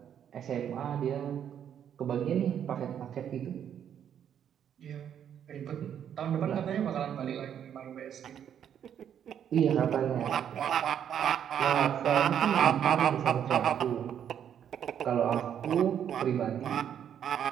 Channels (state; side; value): quieter; left; 9.1 dB